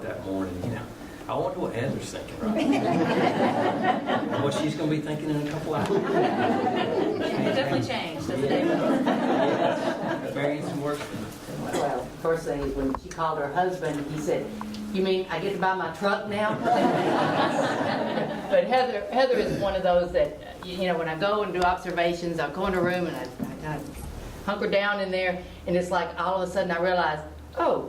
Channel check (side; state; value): both; identical; correlation 1.00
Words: that morning, I wonder what Heather's thinking right now. What she's going to be thinking in a couple hours. It definitely changed, doesn't it? Variance and work. Well, first thing is when she called her husband, he said, "You mean I get to buy my truck now?" But Heather is one of those that, when I go and do observations, I'll go in a room and I kind of hunker down in there, and it's like all of a sudden I realize, oh,